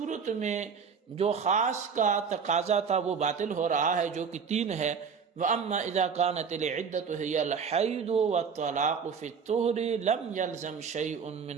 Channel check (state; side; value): quieter; left; 6.2 dB